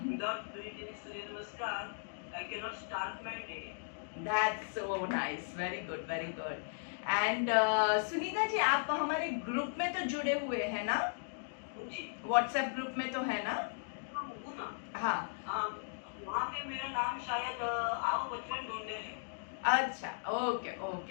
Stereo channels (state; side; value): silent; right; digital silence